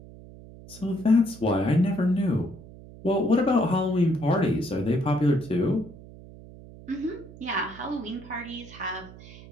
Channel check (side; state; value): right; noise; hum, 18 dB below the sound